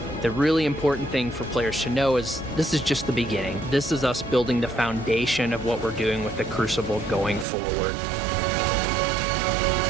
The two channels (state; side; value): drops out; left; at 7.5 s